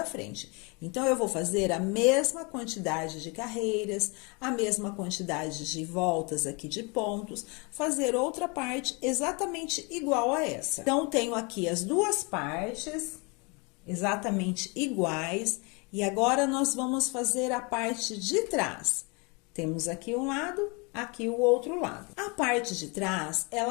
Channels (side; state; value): right; quieter; 30.5 dB